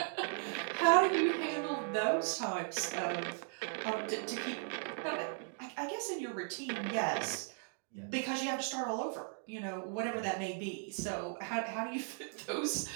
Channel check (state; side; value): silent; left; 53 dB below the other